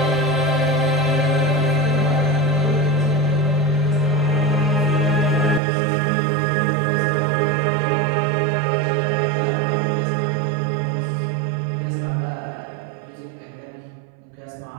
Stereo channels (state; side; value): drops out; left; at 5.6 s